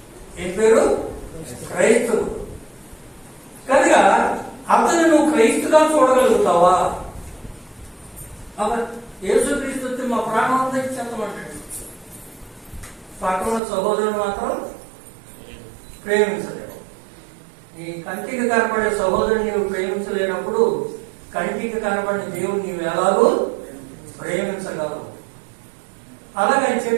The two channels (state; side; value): drops out; left; at 13.6 s